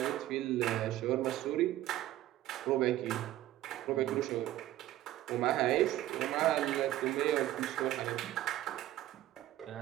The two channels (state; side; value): quieter; left; 14.4 dB